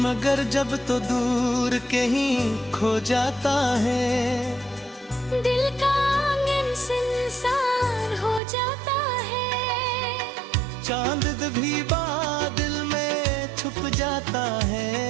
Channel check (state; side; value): drops out; left; at 8.4 s